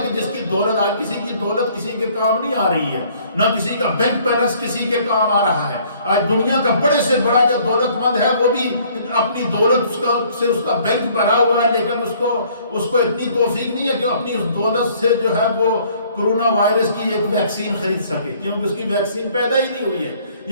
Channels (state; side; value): inverted; both; correlation -0.59